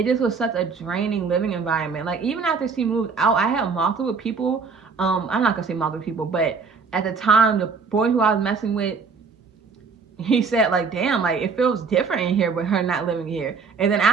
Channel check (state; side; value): quieter; left; 5.1 dB